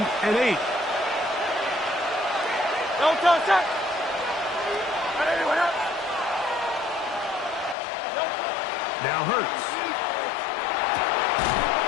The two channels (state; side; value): drops out; right; at 7.8 s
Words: and 8. Now Hurts.